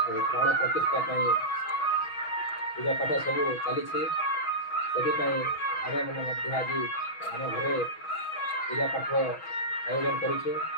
प्रतिष्ठा पूजा पाठ सब चली। से आम मैंने आज आम घर पूजा पाठ आयोजन करुचु।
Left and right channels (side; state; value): right; late; 6.2 ms